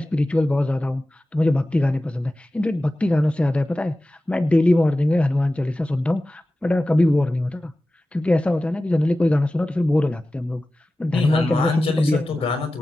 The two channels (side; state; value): both; normal; correlation 0.95